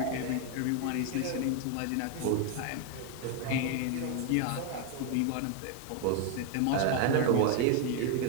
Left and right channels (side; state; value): both; different; correlation 0.01